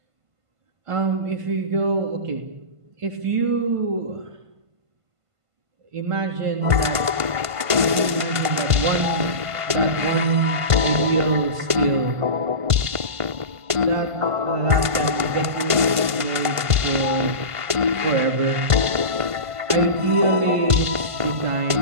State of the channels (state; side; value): late; left; 1.5 ms